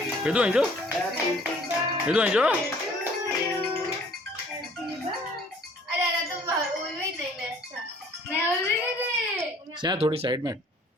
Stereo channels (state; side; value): normal; both; correlation 0.56